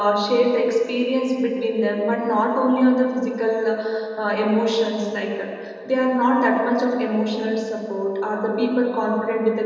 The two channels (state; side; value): identical; both; correlation 1.00